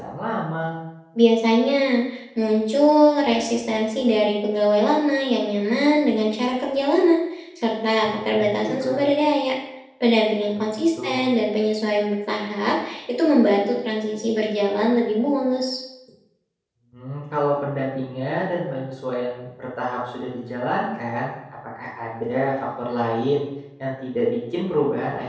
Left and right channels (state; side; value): identical; both; correlation 1.00